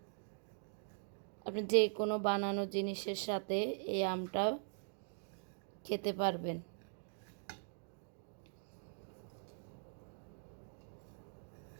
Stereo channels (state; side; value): silent; left; digital silence